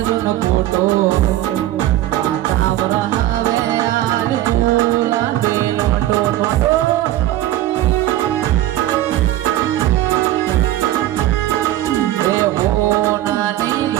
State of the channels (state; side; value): quieter; left; 14.2 dB